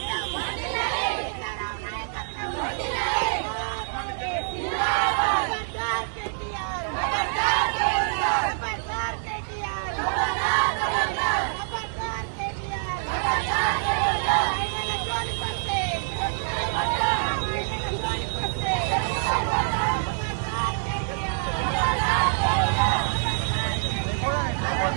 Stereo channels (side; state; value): left; silent; 61 dB below the other